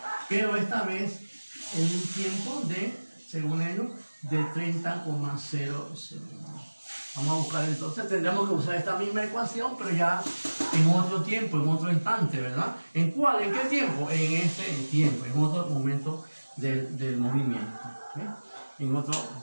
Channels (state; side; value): inverted; both; correlation -1.00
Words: pero esta vez en un tiempo de, según ellos, de 30,0 segundos. Vamos a buscar entonces, tendremos que usar esta misma ecuación, pero ya en otro tiempo, en otro instante, ¿verdad? ¿En cuál? ¿En qué tiempo? En ese tiempo, en otro momento del movimiento. ¿Okay? En otro,